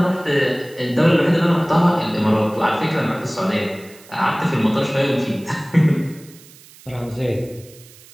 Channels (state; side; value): noise; right; hiss, 23 dB below the sound